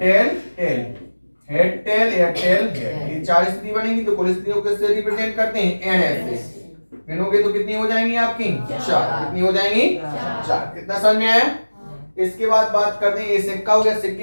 टेल, हेड टेल या टेल हेड, ये 4 स्थिति बनेगी। तो कुल स्थितियों को किससे रिप्रेजेंट करते हैं? NS से। गिनोगे तो कितनी हो जाएंगी आपकी? 4। कितनी हो जाएंगी? 4। कितना समझ में आया? इसके बाद बात करते हैं, ये सिक्का हो गया।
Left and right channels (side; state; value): both; inverted; correlation -1.00